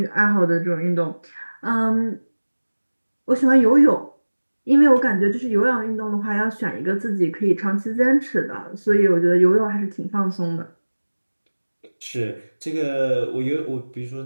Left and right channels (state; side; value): inverted; both; correlation -1.00